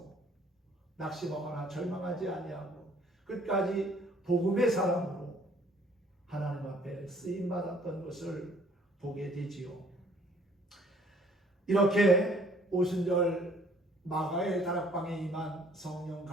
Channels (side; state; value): both; normal; correlation 0.59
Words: 낙심하거나 절망하지 아니하고 끝까지 복음의 사람으로 하나님 앞에 쓰임받았던 것을 보게 되지요. 이렇게 오순절 마가의 다락방에 임한 성령